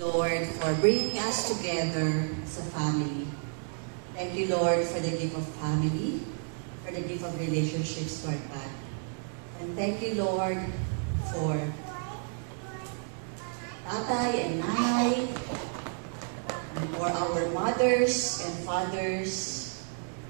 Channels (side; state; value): left; silent; 57 dB below the other